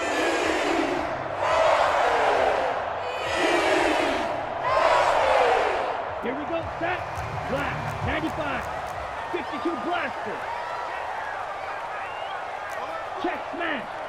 Here we go, set, black, 95, 52 blaster. Check, smash.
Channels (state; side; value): identical; both; correlation 1.00